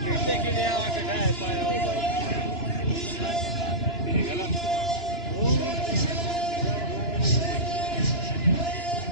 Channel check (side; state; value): right; late; 2.9 ms